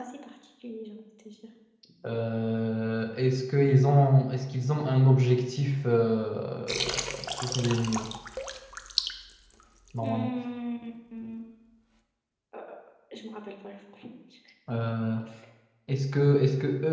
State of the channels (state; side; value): identical; both; correlation 1.00